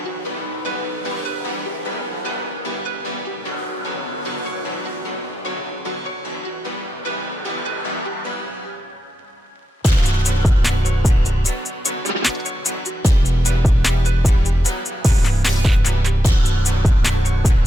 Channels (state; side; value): normal; both; correlation 0.85